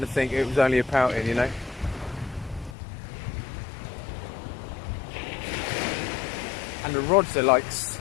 to think it was only a pouting, you know. And the rods are like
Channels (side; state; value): right; drops out; at 2.8 s